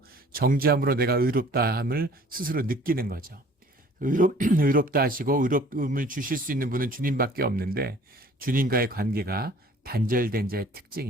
정죄함으로 내가 의롭다함을 스스로 느끼는 거죠. 의롭다 하시고 의롭음을 주실 수 있는 분은 주님밖에 없는데 주님과의 관계가 단절된 자의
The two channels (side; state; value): both; normal; correlation 0.52